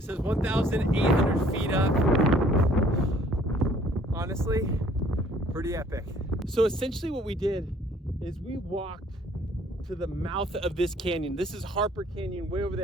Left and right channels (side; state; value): both; normal; correlation 0.58